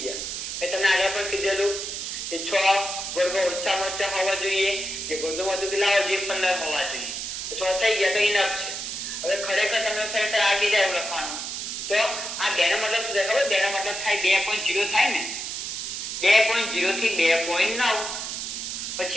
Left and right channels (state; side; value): noise; right; hiss, 5 dB below the sound